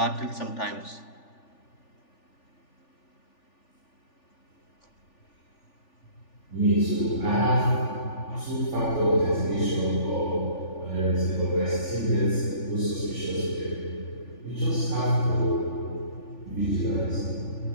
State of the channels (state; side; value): late; right; 3.4 ms